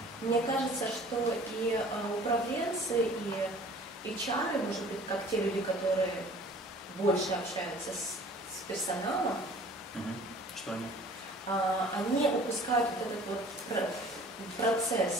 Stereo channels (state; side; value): normal; both; correlation 0.49